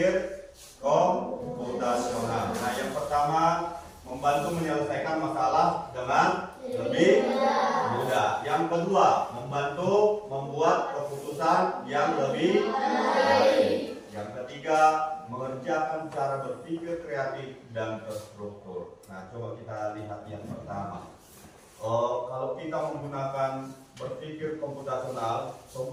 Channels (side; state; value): both; identical; correlation 1.00